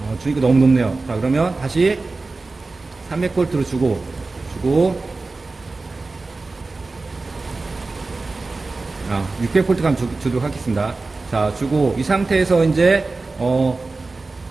주니까 너무 높네요. 자, 그러면 다시 300V로 주고 600V 감 주도록 하겠습니다. 자, 주고 이 상태에서 이제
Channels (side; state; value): left; quieter; 3.6 dB